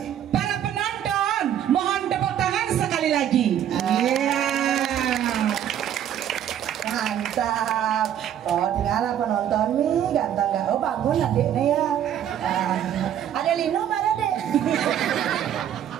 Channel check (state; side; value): quieter; left; 10.2 dB